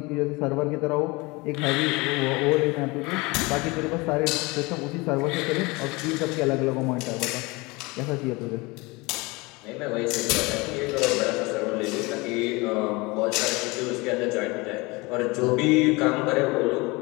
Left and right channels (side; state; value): right; quieter; 24.6 dB